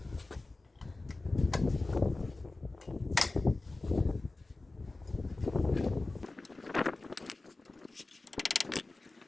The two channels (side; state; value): right; quieter; 3.2 dB